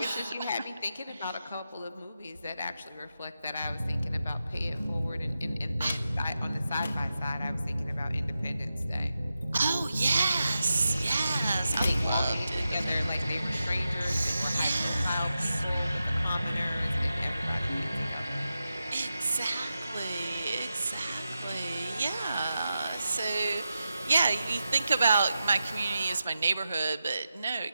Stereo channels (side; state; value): both; inverted; correlation -0.90